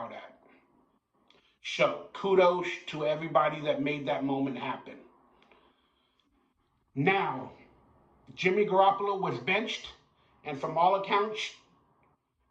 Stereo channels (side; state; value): both; identical; correlation 1.00